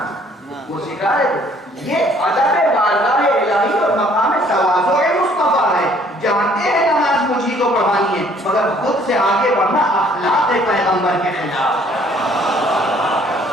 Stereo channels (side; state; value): both; normal; correlation 0.60